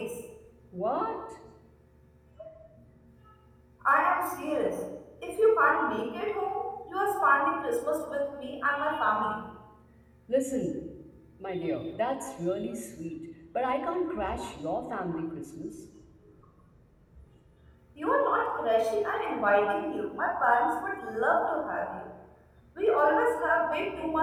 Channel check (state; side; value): identical; both; correlation 1.00